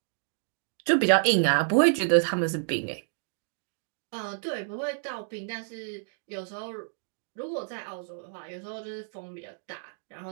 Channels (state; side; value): silent; left; digital silence